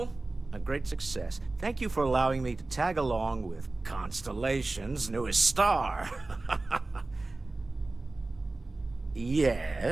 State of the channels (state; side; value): quieter; left; 3.2 dB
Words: a great success. Thank you for allowing me to tag along with Constellation's newest star.